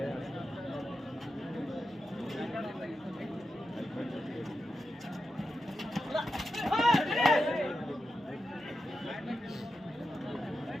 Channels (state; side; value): normal; both; correlation 0.89